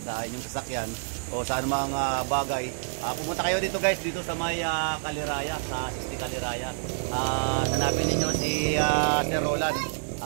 inyong sasakyan o sa anumang bagay, pumunta kayo dito guys, dito sa may Kaliraya, sa 60 Kaliraya. Hanapin ninyo si Sir Roland.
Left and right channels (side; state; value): left; silent; digital silence